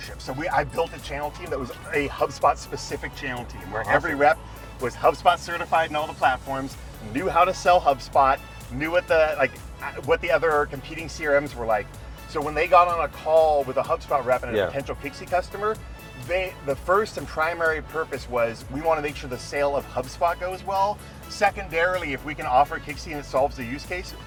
So I built a channel team that was a HubSpot specific channel team where every rep was HubSpot certified in all the platforms, knew how to sell HubSpot, knew what the other competing CRMs were like. So when they got on a call with a HubSpot rep and a potential Kixie customer, the first and primary purpose was, we want to make sure the sale of HubSpot goes well. Secondarily, if we can offer Kixie and it solves the use case,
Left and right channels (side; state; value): both; identical; correlation 1.00